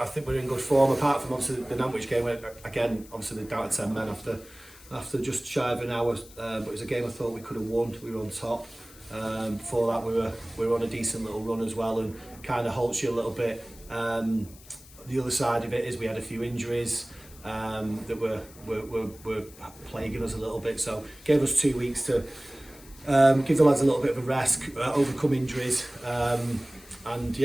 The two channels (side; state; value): left; noise; hiss, 21 dB below the sound